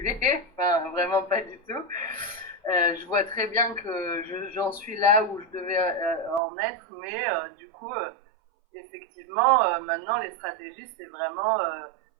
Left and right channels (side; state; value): left; drops out; at 6.4 s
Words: enfin vraiment pas du tout. Je vois très bien que j'en suis là où je devais en être, mais du coup, effectivement, maintenant les stratégies, c'est vraiment